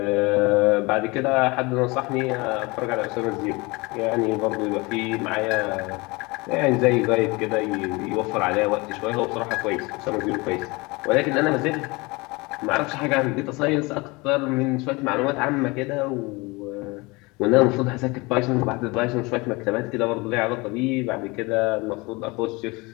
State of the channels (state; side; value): quieter; right; 24.9 dB